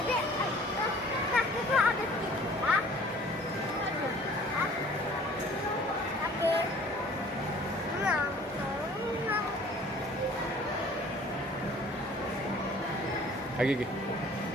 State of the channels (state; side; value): normal; both; correlation 0.51